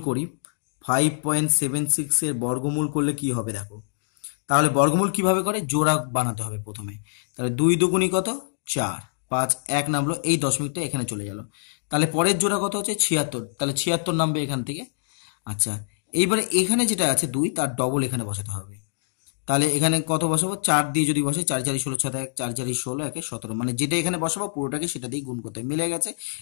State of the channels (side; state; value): right; silent; digital silence